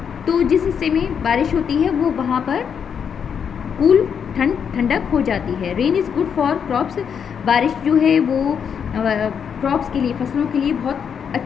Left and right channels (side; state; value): right; quieter; 7.3 dB